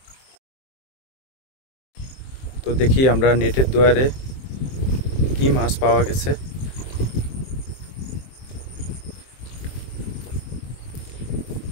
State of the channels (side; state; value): right; late; 23 ms